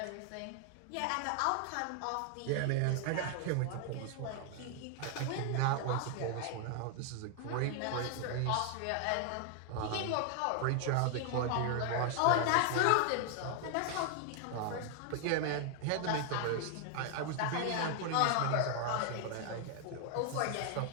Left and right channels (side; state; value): both; different; correlation 0.00